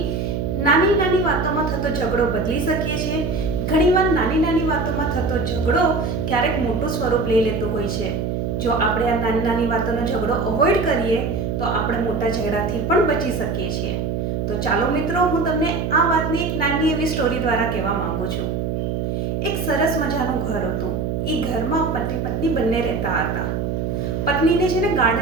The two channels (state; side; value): noise; right; hum, 1 dB below the sound